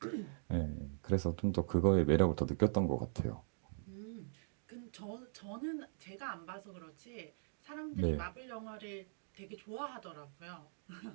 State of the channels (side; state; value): left; silent; digital silence